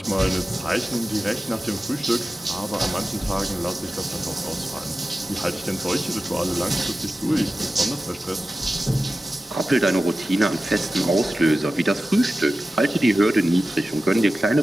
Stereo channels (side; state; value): both; normal; correlation 0.94